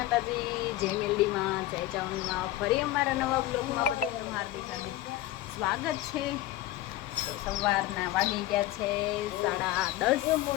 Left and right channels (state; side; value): quieter; right; 15.5 dB